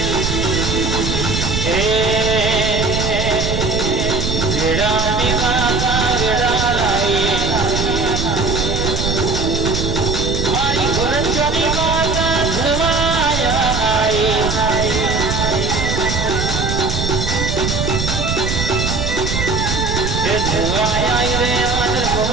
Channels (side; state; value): right; noise; rumble, 2 dB below the sound